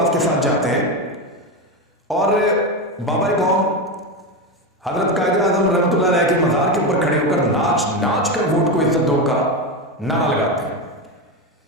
के साथ जाते हैं और बाबा कौम हजरत कायद आजम रहमतुल्लाह अलैह के मज़ार के ऊपर खड़े होकर नाच नाच कर वोट को इज्जत दो का नारा लगाते हैं।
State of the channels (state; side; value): normal; both; correlation 0.15